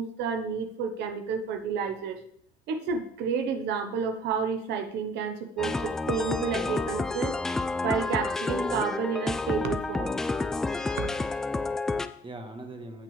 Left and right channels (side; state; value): both; normal; correlation 0.56